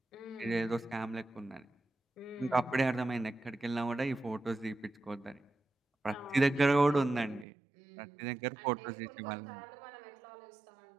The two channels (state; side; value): drops out; left; at 7.5 s